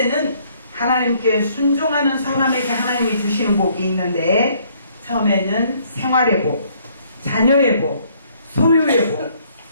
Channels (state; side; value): inverted; both; correlation -0.65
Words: 하나님께 순종하는 사람에게 하나님이 주시는 복이 있는데, 처음에는 생활의 복, 자녀의 복, 소유의 복,